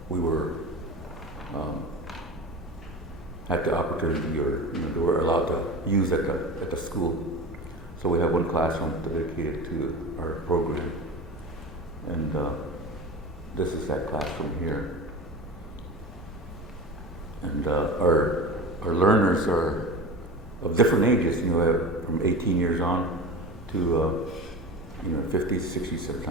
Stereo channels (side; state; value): both; normal; correlation 0.31